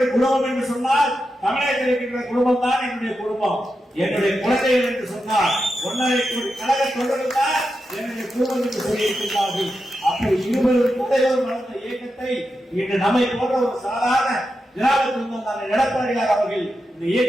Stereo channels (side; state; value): both; normal; correlation 0.88